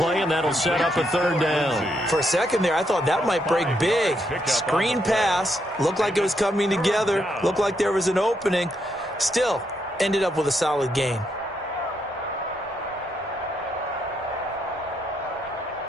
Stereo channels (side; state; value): both; normal; correlation 0.78